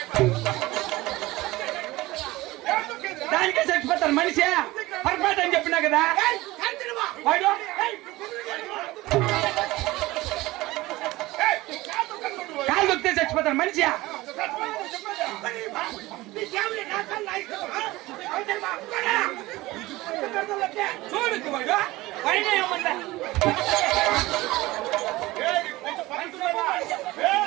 దానికే చచ్చిపోతారు మనిషి పర్ఫెక్ట్ అని చెప్పినా కదా వాడు. కాలు దొక్కితే చచ్చిపోతారు మనిషి. చూడు వాడు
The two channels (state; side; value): quieter; left; 19.3 dB